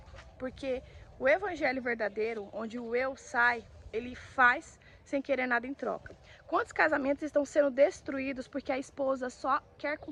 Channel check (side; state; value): both; identical; correlation 1.00